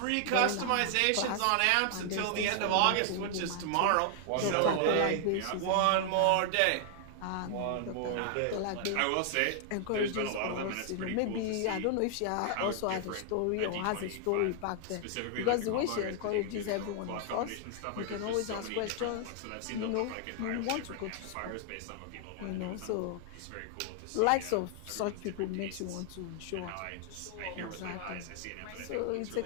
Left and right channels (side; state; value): both; different; correlation 0.00